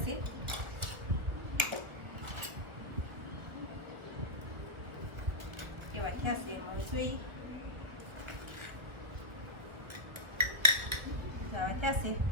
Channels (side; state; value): left; late; 1.6 ms